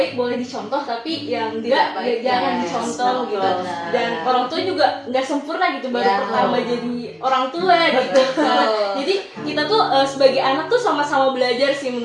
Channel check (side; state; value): both; identical; correlation 1.00